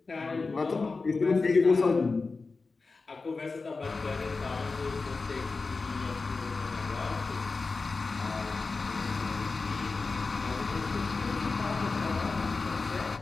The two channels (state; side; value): quieter; right; 4.0 dB